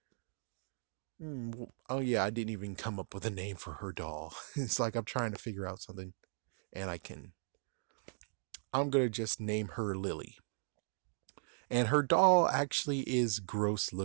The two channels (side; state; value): left; silent; digital silence